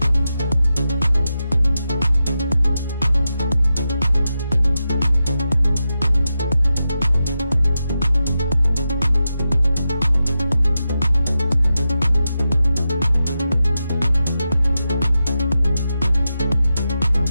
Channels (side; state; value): both; inverted; correlation -0.90